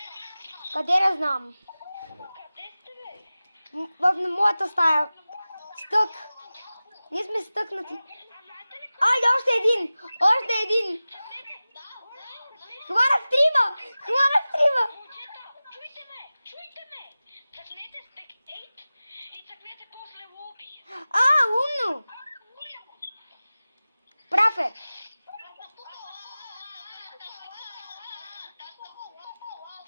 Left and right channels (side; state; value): both; inverted; correlation -0.97